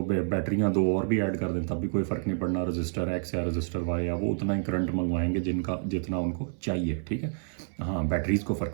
बैटरियाँ दो और भी ऐड कर दें तब भी कोई फ़र्क नहीं पड़ना, रजिस्टर एक्स या रजिस्टर वाई या वो उतना ही करंट मंगवाएंगे जितना उनको चाहिए, ठीक है। हाँ बैटरीज़ को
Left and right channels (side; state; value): left; silent; 57 dB below the other